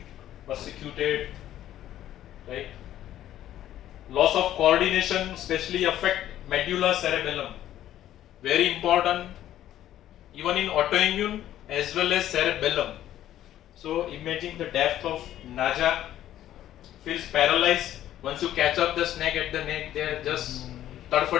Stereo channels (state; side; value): quieter; right; 12.4 dB